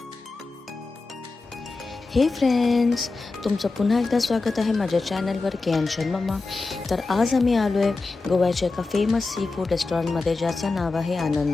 हे फ्रेंड्स, तुमचं पुन्हा एकदा स्वागत आहे माझ्या चॅनलवर केएन मम्मा. तर आज आम्ही आलो आहे गोव्याच्या एका फेमस सी फूड रेस्टॉरंटमध्ये, ज्याचं नाव आहे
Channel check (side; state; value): right; quieter; 3.7 dB